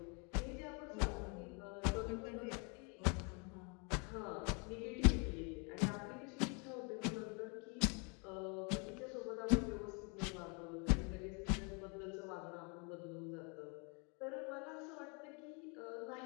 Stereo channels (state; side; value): quieter; right; 34.1 dB